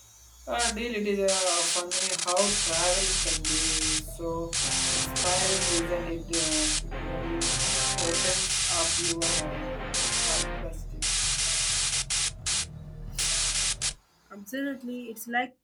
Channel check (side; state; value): both; identical; correlation 1.00